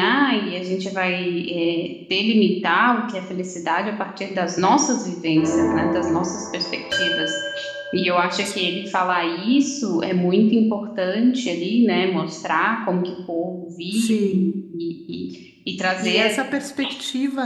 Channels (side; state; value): both; identical; correlation 1.00